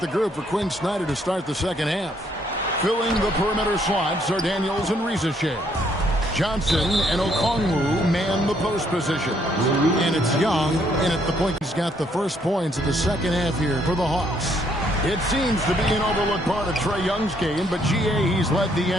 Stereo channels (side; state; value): both; normal; correlation 0.69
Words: group for Quinn Snyder to start the second half. Filling the perimeter slots are Daniels and Rizachet. Johnson and Okongwu man the post position. And it's Young in at the point. He's got the first points of the second half here for the Hawks. It seems to be an overlooked part of Trae Young's game, but GA, he's led the